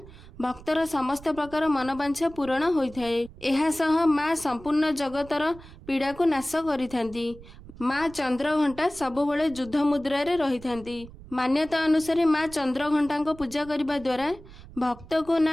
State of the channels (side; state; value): right; noise; rumble, 19 dB below the sound